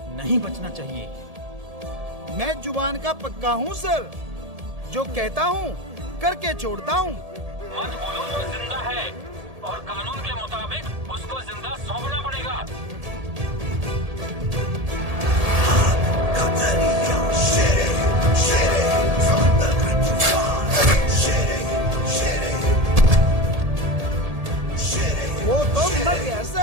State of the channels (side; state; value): left; late; 1.7 ms